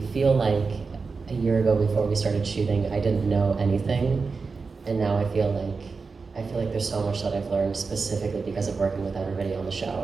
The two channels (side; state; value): left; quieter; 4.6 dB